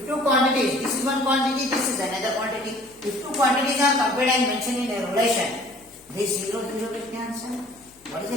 two quantities, this is one quantity, this is another quantity. If two quantities are compared and mentioned in a relation, this 0 0 will cancel. What is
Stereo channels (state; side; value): noise; left; hum, 29 dB below the sound